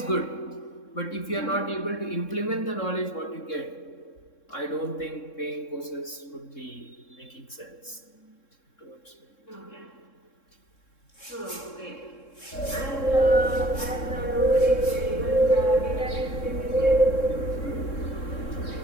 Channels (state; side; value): late; right; 3.7 ms